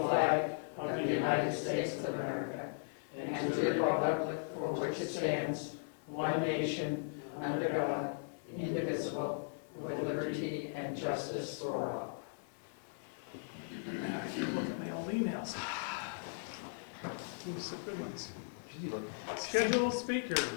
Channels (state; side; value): silent; right; 53 dB below the other